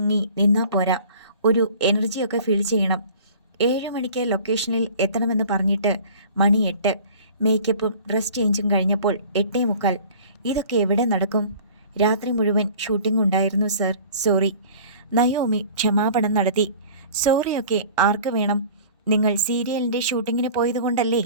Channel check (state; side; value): inverted; both; correlation -0.45